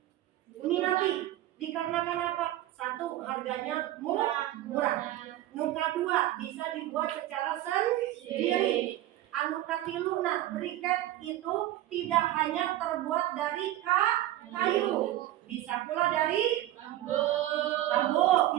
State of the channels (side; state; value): left; quieter; 14.4 dB